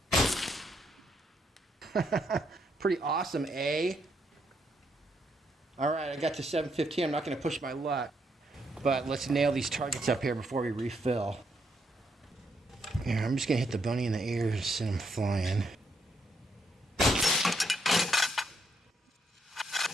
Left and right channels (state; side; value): normal; both; correlation 0.76